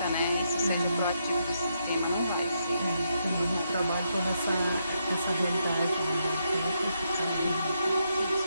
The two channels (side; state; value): both; inverted; correlation -0.80